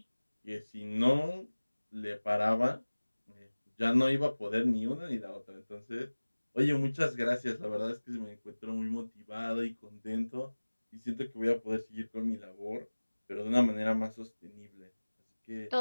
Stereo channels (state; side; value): inverted; both; correlation -1.00